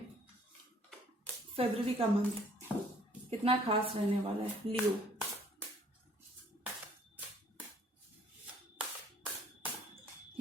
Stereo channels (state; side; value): normal; both; correlation 0.59